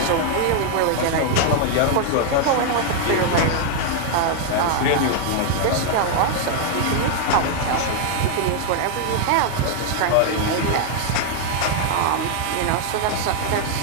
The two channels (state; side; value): different; both; correlation 0.00